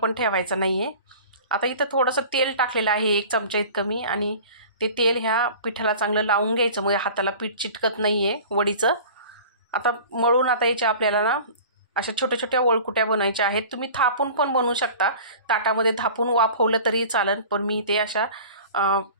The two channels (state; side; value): inverted; both; correlation -0.41